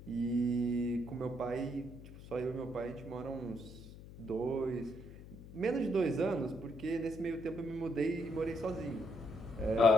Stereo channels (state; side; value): noise; left; hum, 15 dB below the sound